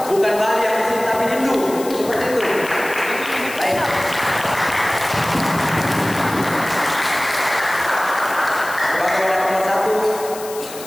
Bukan Bali yang di sini, tapi Hindu, seperti itu. Baik. Sebagai wadah pemersatu,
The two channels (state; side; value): noise; left; hiss, 14 dB below the sound